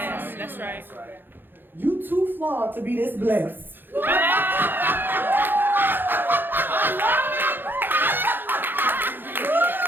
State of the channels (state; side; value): late; left; 0.097 ms